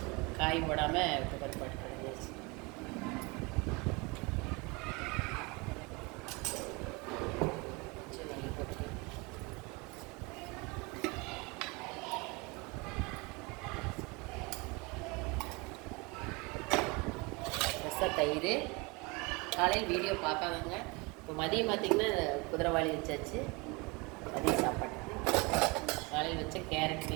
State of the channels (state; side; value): quieter; left; 27.2 dB